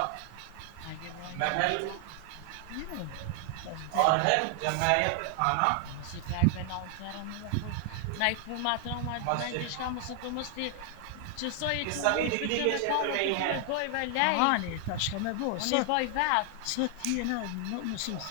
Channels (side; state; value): both; different; correlation 0.00